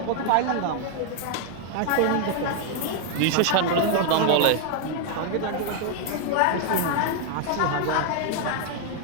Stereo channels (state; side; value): different; both; correlation 0.00